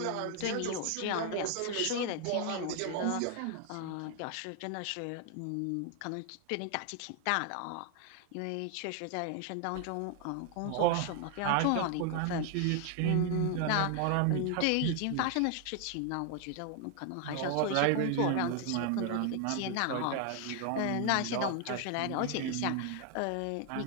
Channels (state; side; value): different; both; correlation 0.00